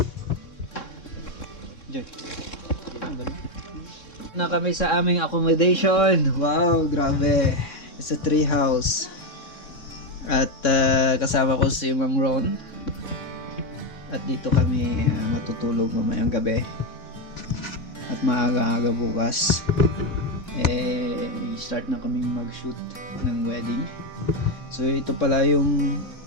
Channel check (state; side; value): late; right; 3.6 ms